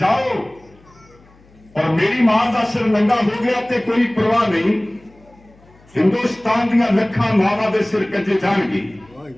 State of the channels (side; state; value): left; noise; hum, 28 dB below the sound